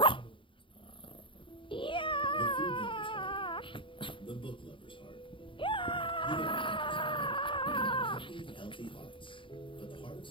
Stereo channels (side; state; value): right; late; 0.25 ms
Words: Yeah. The book lover's heart. Happy, healthy hearts. But the heart of